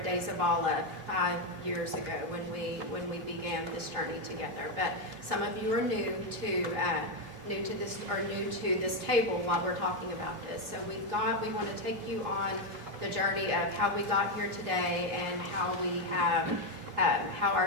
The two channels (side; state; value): left; late; 3.1 ms